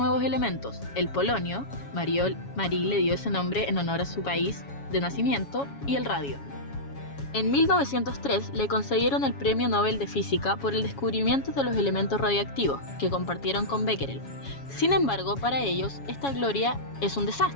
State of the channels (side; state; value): right; late; 7.2 ms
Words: elementos, el polonio, Marie le dio ese nombre en honor a su país de nacimiento, y el radio. En 1903 le concedieron el Premio Nobel de Física por el descubrimiento de los elementos radioactivos, que compartieron con Becquerel. Sin embargo, para ellos, esta gloria es un